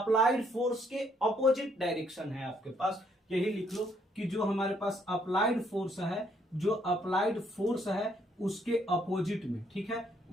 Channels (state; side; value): normal; both; correlation 0.69